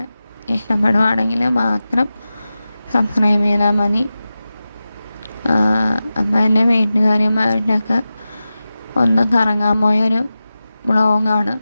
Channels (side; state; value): both; inverted; correlation -0.94